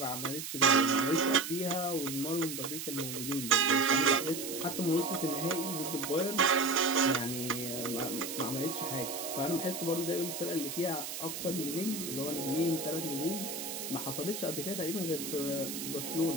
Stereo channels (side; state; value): right; noise; hiss, 6 dB below the sound